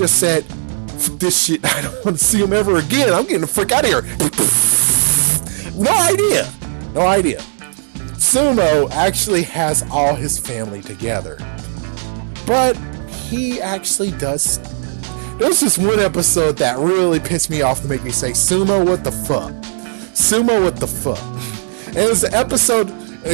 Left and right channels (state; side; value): silent; left; 69 dB below the other